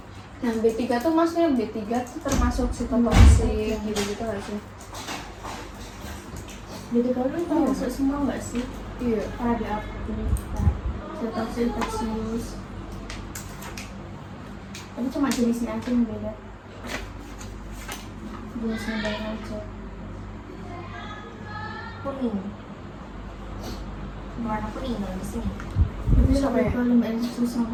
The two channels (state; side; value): identical; both; correlation 1.00